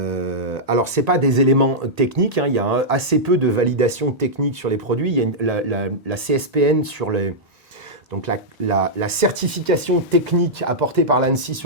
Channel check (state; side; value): normal; both; correlation -0.09